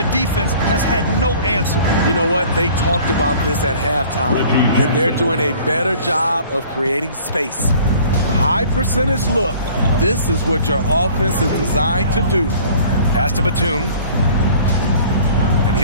defense has had no answer. You know what? They talked about this at halftime, and they're doing a better job of creating space. High percentage look. This is what your offense is designed to do. Pass to Batum. And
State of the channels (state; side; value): inverted; both; correlation -0.50